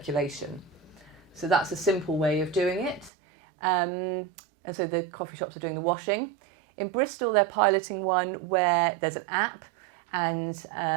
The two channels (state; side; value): drops out; left; at 3.1 s